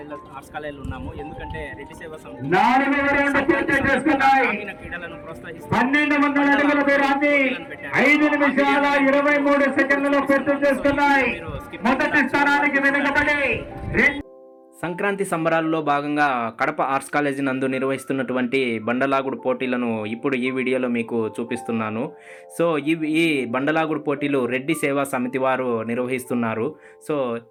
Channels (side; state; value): both; identical; correlation 1.00